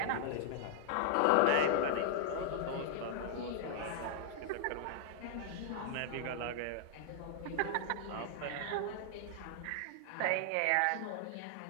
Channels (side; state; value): both; different; correlation 0.00